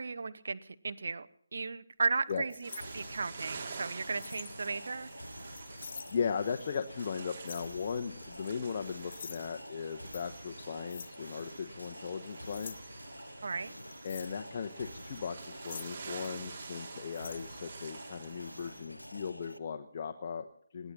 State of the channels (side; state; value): both; inverted; correlation -0.83